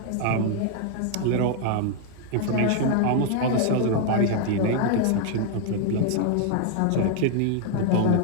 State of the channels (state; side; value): different; both; correlation 0.00